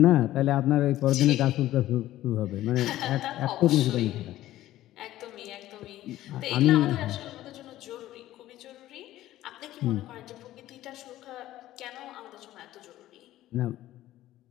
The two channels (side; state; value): right; quieter; 14.6 dB